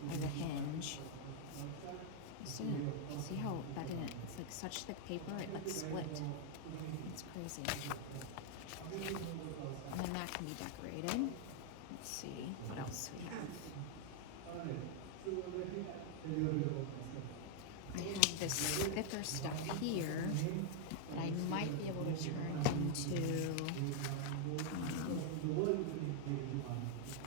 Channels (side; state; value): both; different; correlation 0.00